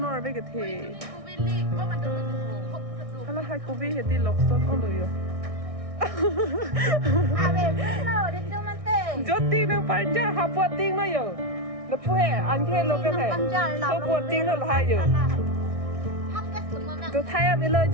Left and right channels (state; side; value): late; left; 1.6 ms